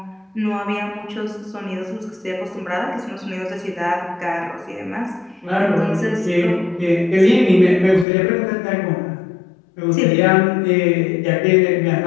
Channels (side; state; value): right; drops out; at 8.1 s